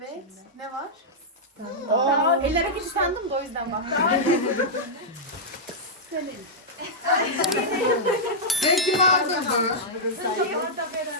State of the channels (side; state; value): both; normal; correlation -0.07